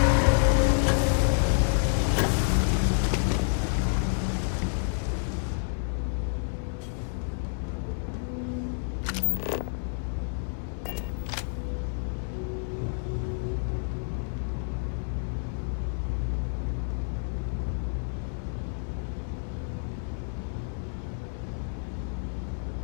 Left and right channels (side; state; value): right; silent; 59 dB below the other